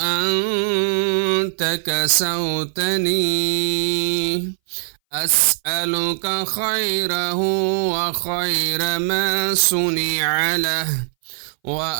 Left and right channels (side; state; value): left; silent; 62 dB below the other